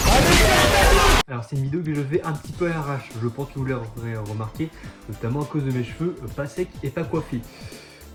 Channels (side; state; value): both; identical; correlation 1.00